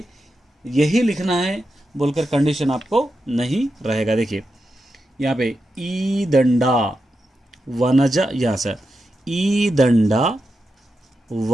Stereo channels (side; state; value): both; normal; correlation 0.88